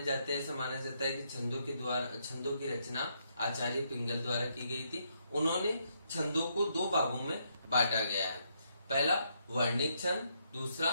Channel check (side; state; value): both; inverted; correlation -0.75